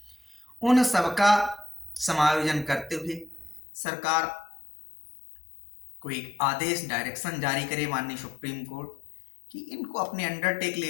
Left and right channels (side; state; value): right; drops out; at 3.6 s